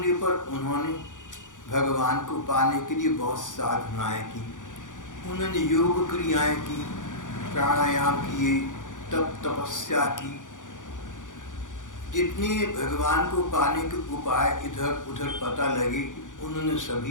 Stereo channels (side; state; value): right; late; 0.87 ms